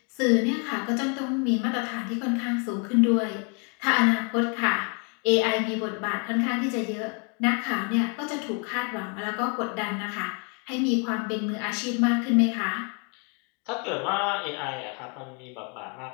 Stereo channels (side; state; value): right; quieter; 35.8 dB